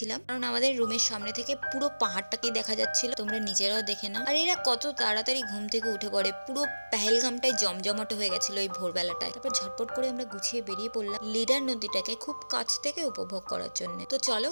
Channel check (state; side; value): inverted; both; correlation -1.00